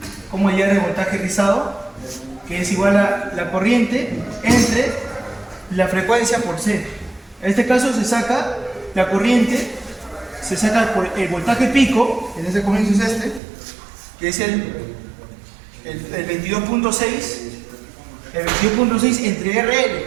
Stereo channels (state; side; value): drops out; left; at 13.4 s